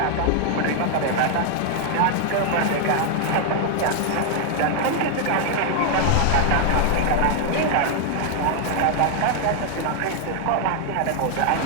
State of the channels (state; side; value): different; both; correlation 0.00